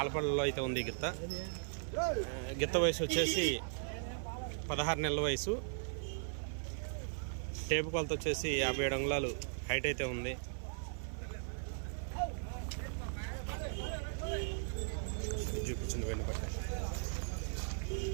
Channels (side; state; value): left; silent; 52 dB below the other